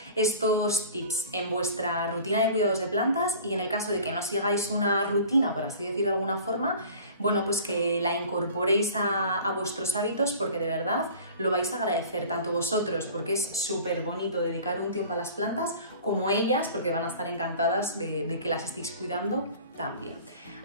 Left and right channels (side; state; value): both; inverted; correlation -0.44